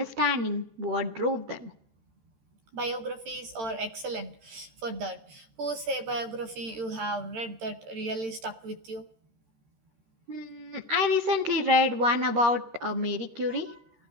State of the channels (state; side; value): late; left; 13 ms